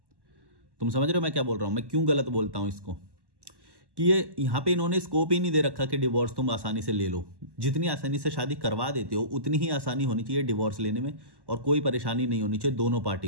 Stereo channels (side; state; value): left; late; 1.1 ms